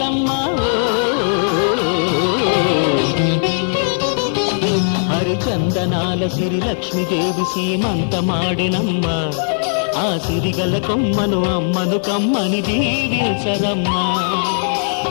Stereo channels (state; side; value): silent; right; digital silence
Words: హరిచందనాల సిరి లక్ష్మీదేవి సీమంతమాడెనమ్మ. ఆ సిరిగల కొమ్మను అమ్మను కమ్మని దీవించరమ్మా.